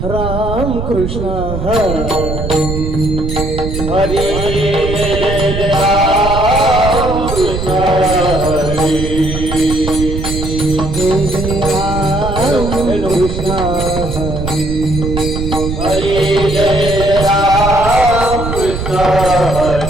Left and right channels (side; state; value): right; noise; rumble, 5 dB below the sound